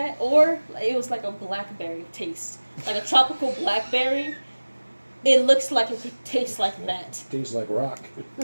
or it was like a blackberry taste, like a tropical blackberry. It looks like it could taste like that. Tastes like rock.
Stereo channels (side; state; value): both; inverted; correlation -1.00